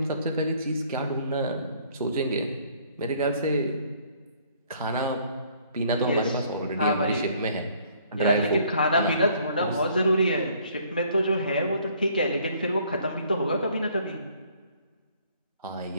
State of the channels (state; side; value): inverted; both; correlation -0.61